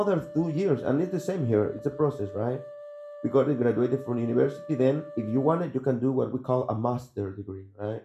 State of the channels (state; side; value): identical; both; correlation 1.00